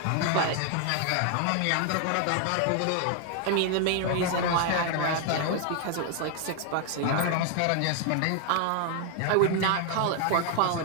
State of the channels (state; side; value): different; both; correlation 0.00